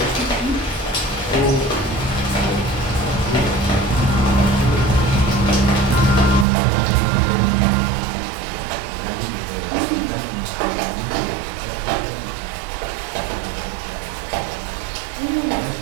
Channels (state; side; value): drops out; left; at 6.5 s